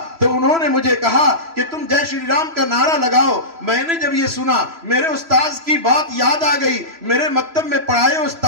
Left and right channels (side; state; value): left; late; 3.0 ms